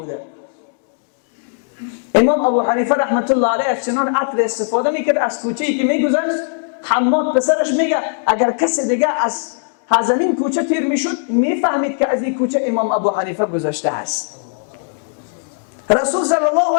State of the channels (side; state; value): right; silent; digital silence